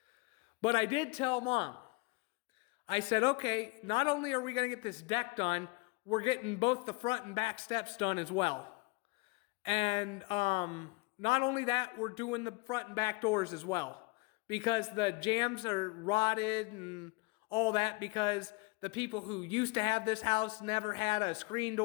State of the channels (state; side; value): quieter; right; 26.2 dB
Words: But I did tell Mom, I said, okay, not only are we going to get this deck done, we're getting both the front and back steps done as well. And not only that, we're doing the front and back doors as well. Because the jambs are rotted and all that because the people who used to have this house never had a screen